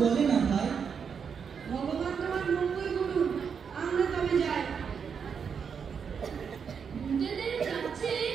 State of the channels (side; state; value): left; quieter; 6.6 dB